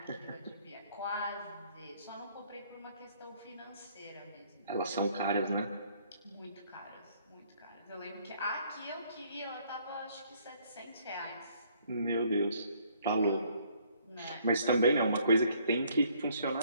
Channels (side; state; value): both; inverted; correlation -0.63